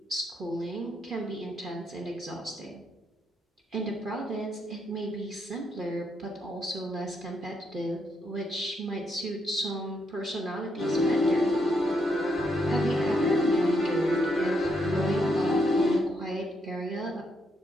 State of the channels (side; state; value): both; normal; correlation 0.78